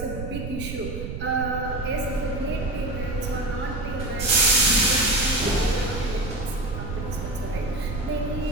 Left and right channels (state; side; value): noise; right; rumble, 7 dB below the sound